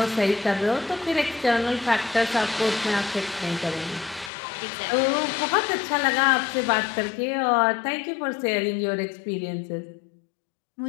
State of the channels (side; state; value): right; drops out; at 4.3 s